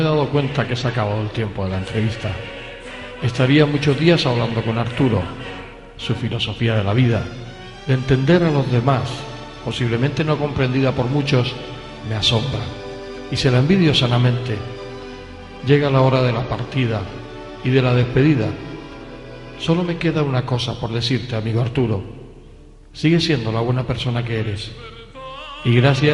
he dado cuenta que se ha acabado el tiempo de la entrevista. Estaría muchos días hablando con Arturo. Su filosofía de la vida, de entender a los demás, posiblemente no comprendida por muchos, me asombra. Y se la envidio sanamente. Llega la hora de la partida y de la despedida. Solo me queda una cosa por decirte, amigo Arturo. Sigue siendo la buena persona que eres. Y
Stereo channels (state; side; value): identical; both; correlation 1.00